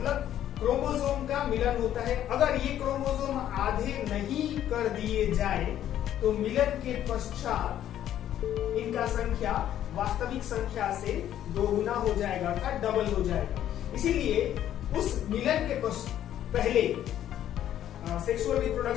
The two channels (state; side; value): quieter; right; 11.4 dB